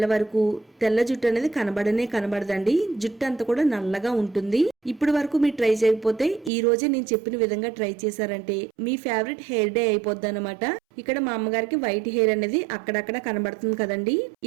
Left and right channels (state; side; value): drops out; left; at 6.5 s